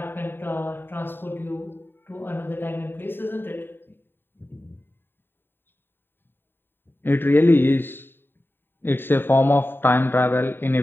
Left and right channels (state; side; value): late; right; 0.099 ms